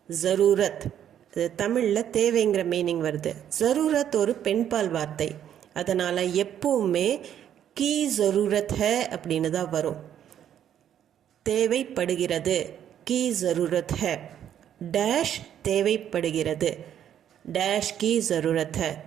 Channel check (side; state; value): left; quieter; 10.0 dB